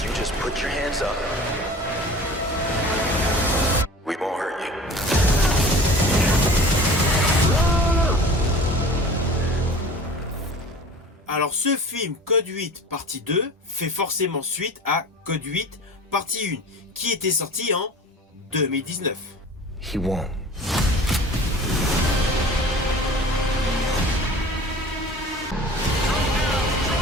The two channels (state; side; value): normal; both; correlation 0.41